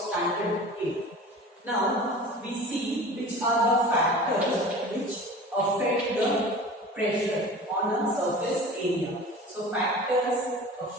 8. Now we see which are the factors which affect the pressure on a surface area. So factors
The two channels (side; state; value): both; normal; correlation 0.38